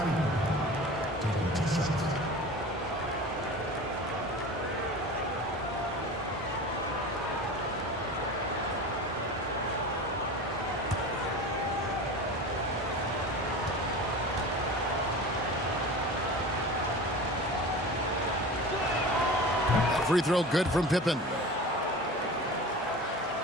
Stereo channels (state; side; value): normal; both; correlation 0.34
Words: taking 2 shots. Free throw good from Pippen.